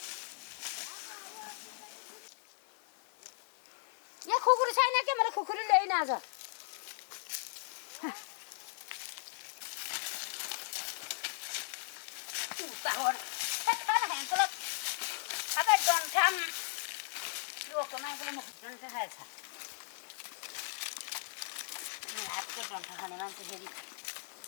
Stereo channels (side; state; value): right; silent; digital silence